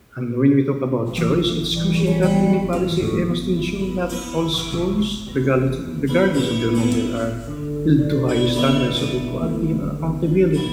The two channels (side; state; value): both; identical; correlation 1.00